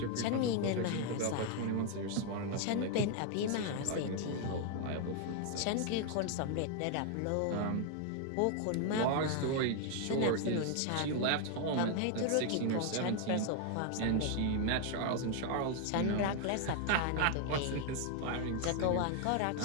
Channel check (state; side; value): different; both; correlation 0.00